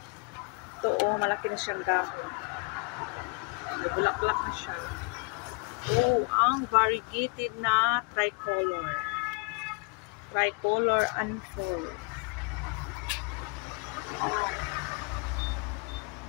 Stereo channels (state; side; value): quieter; right; 33.7 dB